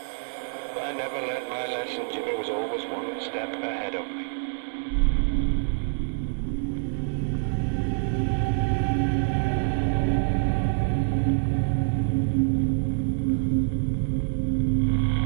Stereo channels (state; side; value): silent; left; digital silence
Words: But I never learnt my lesson. Jimmy was always one step ahead of me.